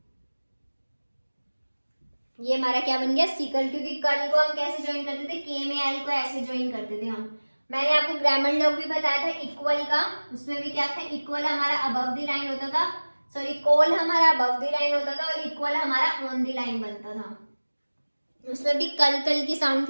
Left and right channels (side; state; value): both; inverted; correlation -1.00